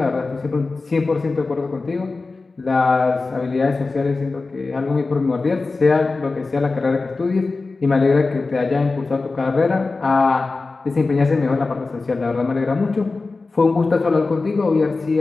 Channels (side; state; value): right; quieter; 3.8 dB